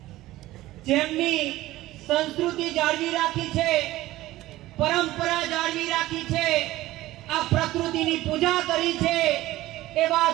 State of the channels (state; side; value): quieter; left; 16.7 dB